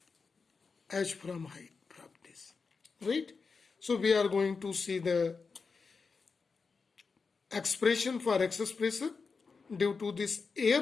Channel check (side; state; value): right; quieter; 4.8 dB